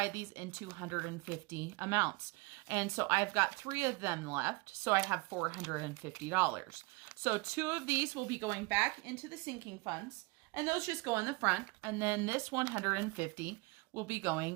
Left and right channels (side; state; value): left; quieter; 25.7 dB